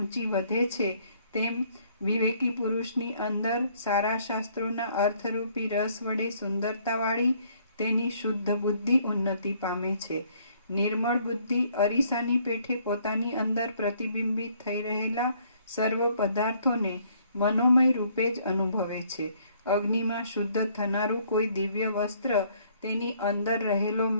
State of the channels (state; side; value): inverted; both; correlation -0.64